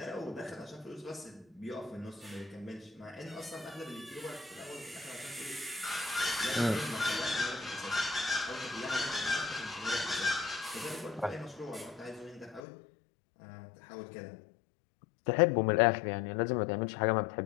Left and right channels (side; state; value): right; drops out; at 12.7 s